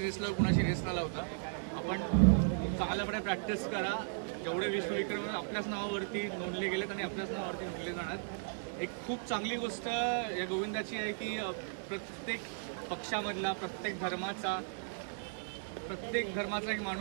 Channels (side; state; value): left; silent; digital silence